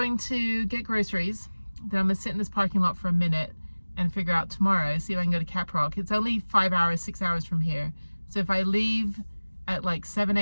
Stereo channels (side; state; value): both; inverted; correlation -1.00